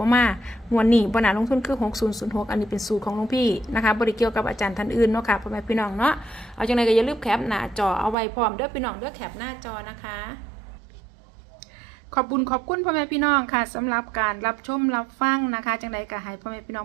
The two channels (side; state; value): left; drops out; at 8.2 s